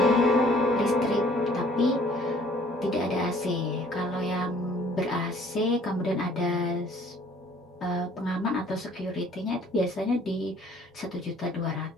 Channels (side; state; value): both; normal; correlation 0.57